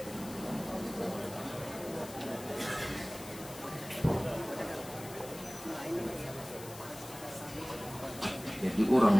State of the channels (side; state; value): left; noise; hiss, 15 dB below the sound